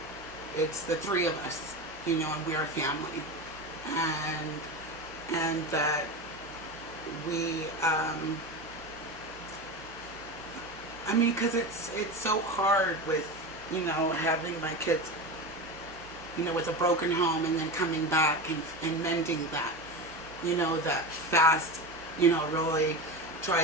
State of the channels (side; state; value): both; normal; correlation 0.24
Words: it's the three of us, and we're a family, and that we, because it's so hard with, having my kids, with a broken home and then coming back and mending that, that FAST, really